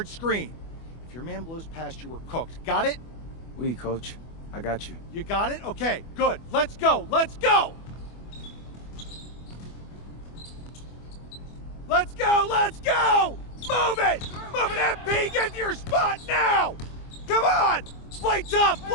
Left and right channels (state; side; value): late; right; 24 ms